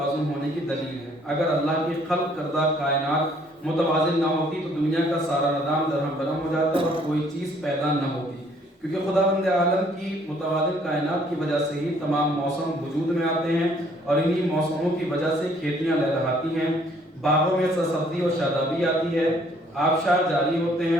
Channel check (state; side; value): normal; both; correlation 0.62